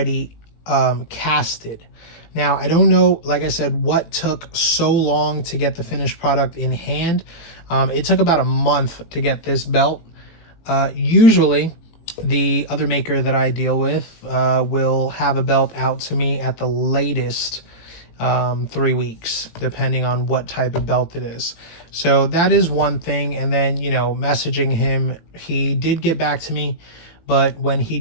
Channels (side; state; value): right; late; 18 ms